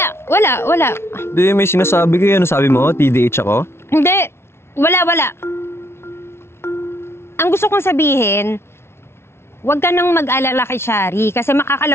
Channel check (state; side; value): late; right; 0.12 ms